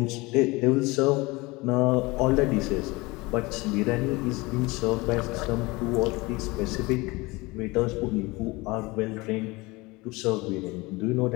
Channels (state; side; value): quieter; right; 23.3 dB